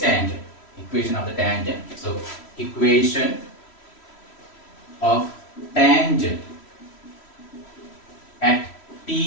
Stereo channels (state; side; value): late; right; 3.1 ms